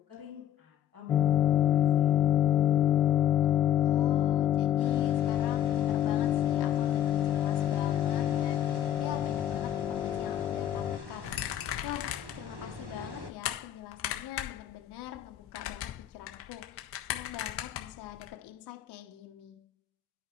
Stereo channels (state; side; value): quieter; right; 11.2 dB